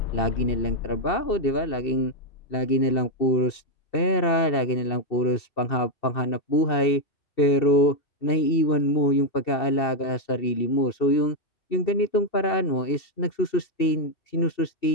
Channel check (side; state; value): right; late; 2.7 ms